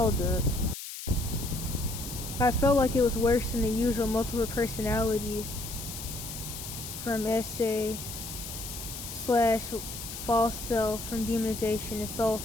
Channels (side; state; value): left; noise; hiss, 9 dB below the sound